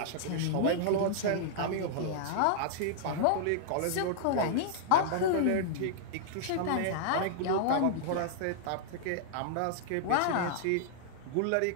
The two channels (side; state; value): both; different; correlation -0.01